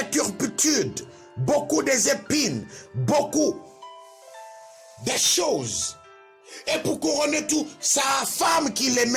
turpitudes, beaucoup des épines, beaucoup de choses. Et pour couronner tout, sa femme qu'il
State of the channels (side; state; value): both; identical; correlation 1.00